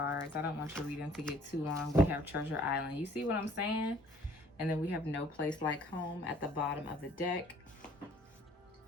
I don't want your reading to get too long. We have Treasure Island. You see what I'm saying? And then we have No Place Like Home at the bottom of the deck.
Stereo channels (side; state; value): both; normal; correlation 0.57